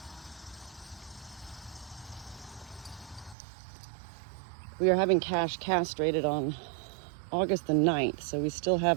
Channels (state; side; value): drops out; left; at 3.4 s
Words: We are having Cash castrated on August the 9th, so we still